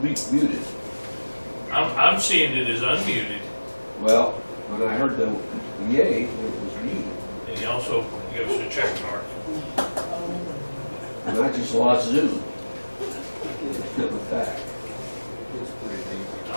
muted? I'm seeing it as unmuted, Well, when I heard the yay, it was muted. and he also gives us a check mark. And I just lost Zoom. Coming back.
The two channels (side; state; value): both; inverted; correlation -1.00